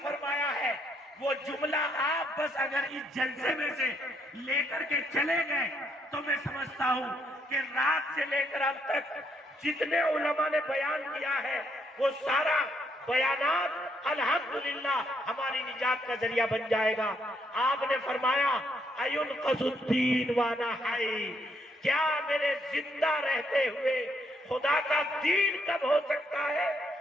فرمایا ہے، وہ جملہ آپ بس اگر اس جلسے میں سے لے کر کے چلے گئے تو میں سمجھتا ہوں کہ رات سے لے کر اب تک جتنے علماء نے بیان کیا ہے وہ سارا بیانات الحمدللہ ہماری نجات کا ذریعہ بن جائے گا. آپ نے فرمایا اَيُنْقَذُ الدِّينُ وَأَنَا حَيٌّ، کیا میرے زندہ رہتے ہوئے خدا کا دین کب ہو سکتا ہے؟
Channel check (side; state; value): both; normal; correlation 0.73